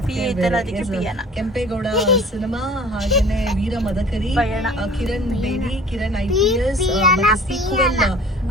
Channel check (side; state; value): both; normal; correlation 0.46